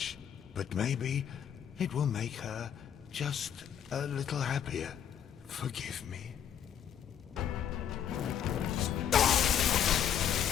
But maybe it will make her just a little happier. Forgive me.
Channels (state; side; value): quieter; right; 9.0 dB